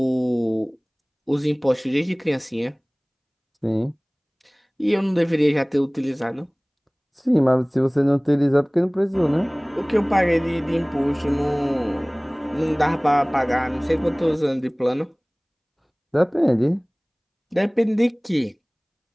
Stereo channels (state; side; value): identical; both; correlation 1.00